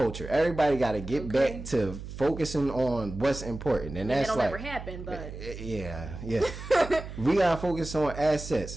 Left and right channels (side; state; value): right; noise; hum, 10 dB below the sound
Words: Everybody gotta get back to focusing on what's important, and that's like, never happen, but yeah. We gotta focus on